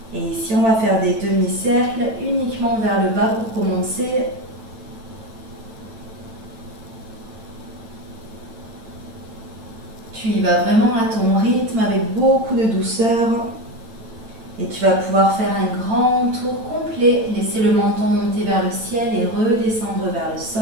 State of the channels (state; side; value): late; left; 9.0 ms